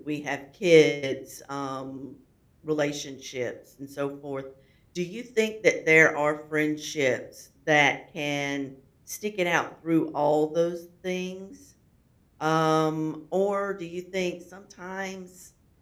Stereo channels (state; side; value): identical; both; correlation 1.00